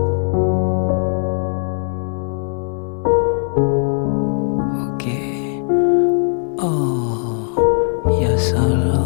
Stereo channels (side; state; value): right; silent; 62 dB below the other